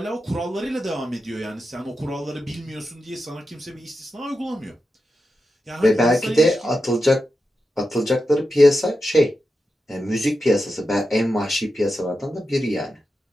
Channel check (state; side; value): normal; both; correlation 0.89